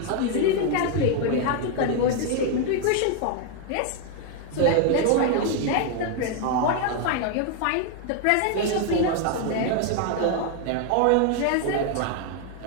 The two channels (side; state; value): both; different; correlation 0.00